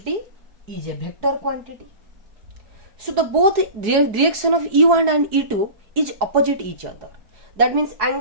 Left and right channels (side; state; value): left; late; 4.7 ms